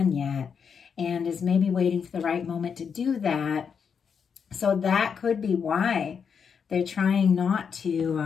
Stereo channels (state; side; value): quieter; right; 6.6 dB